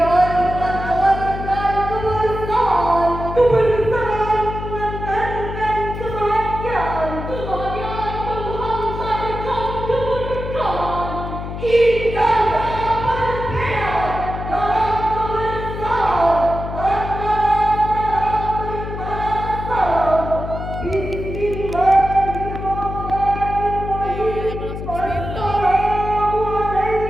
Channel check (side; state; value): left; noise; hum, 7 dB below the sound